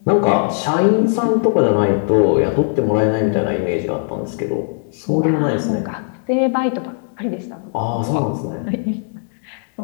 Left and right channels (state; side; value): silent; right; digital silence